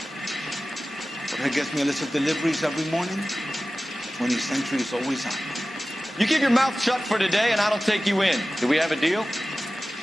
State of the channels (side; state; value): both; normal; correlation 0.96